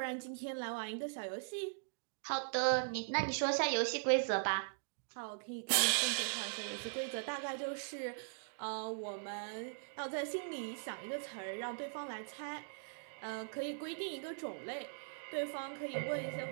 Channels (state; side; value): silent; left; digital silence